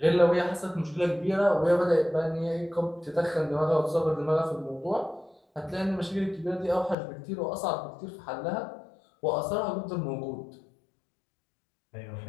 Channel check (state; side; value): drops out; right; at 7.0 s